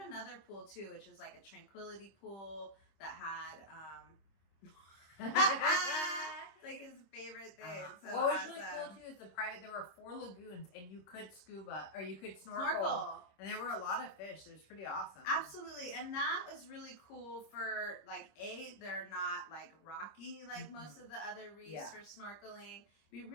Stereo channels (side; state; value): right; late; 26 ms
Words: another pool too, which was like a tranquility pool that had like his favorite thing. So what was really cool too is there were 4 lagoons and you could scuba or you could snorkel. And there were a lot of fish. It was pretty awesome. Absolutely. And that was really cool for like they're not like rocky like most of the other reefs for snorkeling. Be